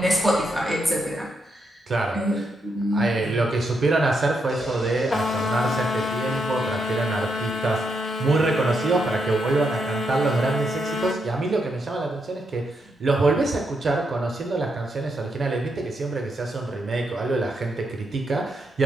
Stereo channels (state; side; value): normal; both; correlation 0.81